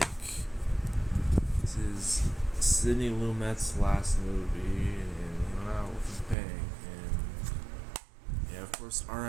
This is Sidney Lumet's last movie, and he went out with a bang. And yeah, of course,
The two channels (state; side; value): drops out; left; at 6.4 s